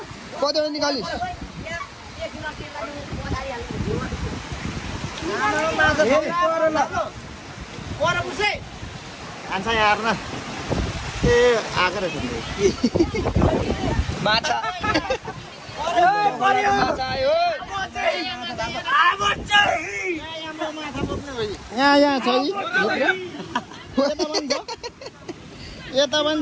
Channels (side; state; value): both; identical; correlation 1.00